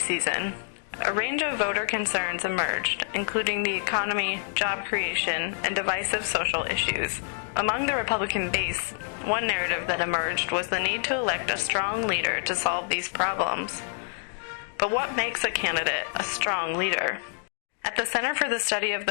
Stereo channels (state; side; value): silent; right; digital silence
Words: a range of voter concerns emerged, including the economy, job creation, and divisive social issues. Among the Republican base, one narrative that emerged was the need to elect a strong leader to solve these problems. But what makes a candidate a strong leader? At the Center for the Study of